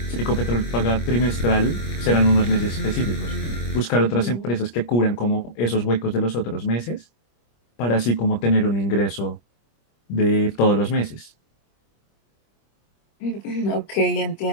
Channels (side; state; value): right; late; 25 ms